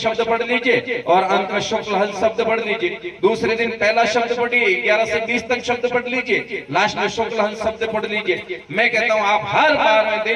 पढ़ लीजिए और अंत में शुक्ल हंस शब्द पढ़ लीजिए। दूसरे दिन पहला शब्द पढ़िए, 11 से 20 तक शब्द पढ़ लीजिए, लास्ट में शुक्ल हंस शब्द पढ़ लीजिए। मैं कहता हूं आप हर 12वें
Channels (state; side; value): identical; both; correlation 1.00